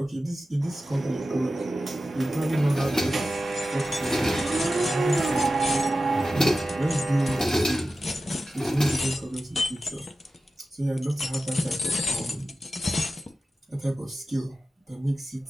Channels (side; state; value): both; normal; correlation 0.93